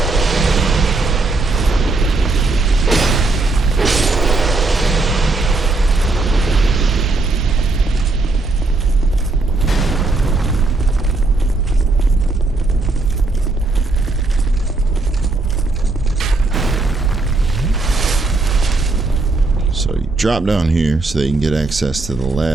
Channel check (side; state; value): left; quieter; 3.3 dB